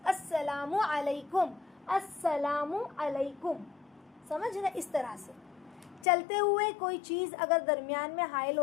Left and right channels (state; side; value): drops out; right; at 6.1 s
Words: السلام علیکم, السلام علیکم, سمجھ رہے. اس طرح سے چلتے ہوئے کوئی چیز اگر درمیان میں حائل